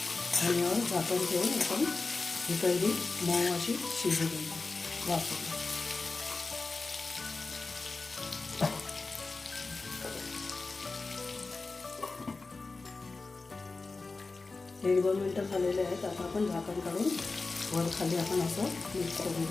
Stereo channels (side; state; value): right; quieter; 3.8 dB